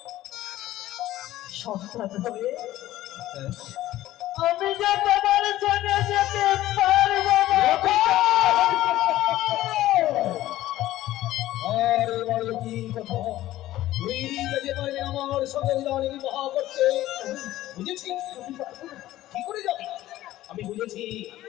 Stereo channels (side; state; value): right; quieter; 14.9 dB